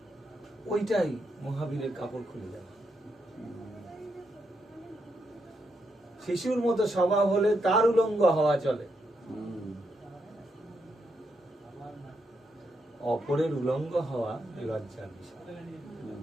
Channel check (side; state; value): both; normal; correlation 0.80